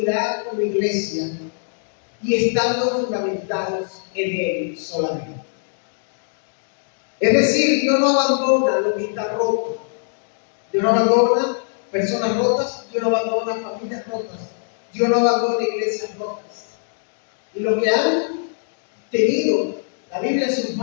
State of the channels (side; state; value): right; silent; digital silence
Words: con la iglesia y estando fundamentados en Él solamente. Es decir, Dios no abandona lo que está roto. Dios no abandona personas rotas, Dios no abandona familias rotas, Dios no abandona iglesias rotas. Y los que han tenido la Biblia en sus